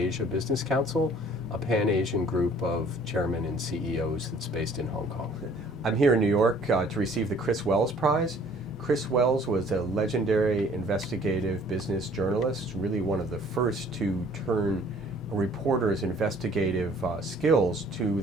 Business Council, a pan-Asian group of chairmen and CEOs that's based in Hong Kong. I'm here in New York to receive the Chris Wells Prize. Chris Wells was a legendary investigative business journalist, really one of the first to turn a reporter's investigative skills to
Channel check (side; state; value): both; normal; correlation 0.55